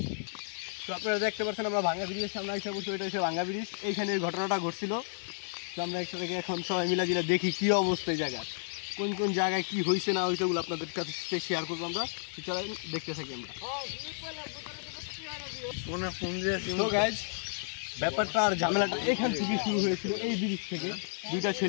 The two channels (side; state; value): right; silent; digital silence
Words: তো আপনারা দেখতে পাচ্ছেন আমরা ভাঙ্গা ব্রিজের সামনে এসে বসে, এটা হচ্ছে ভাঙ্গা ব্রিজ। এইখানে ঘটনাটা ঘটছিল। তো আমরা একসাথে এখন সবাই মিলা জিলা দেখি কী অবস্থা এই জায়গায়, কোন কোন জায়গায় কী হয়েছে না হয়েছে ওগুলো আপনাদের কাছে শেয়ার করবো। আমরা চলেন দেখতে থাকি আমরা। তো গাইজ ব্যাপারটা আর ঝামেলাটা এখান থেকে শুরু হয়েছিল, এই ব্রিজ থেকে। দুইটা